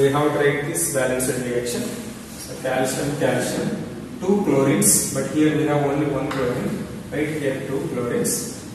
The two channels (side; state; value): both; identical; correlation 1.00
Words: have to write this balanced reaction. So calcium, 2 chlorines, but here we have only 1 chlorine. Right here 2 chlorines.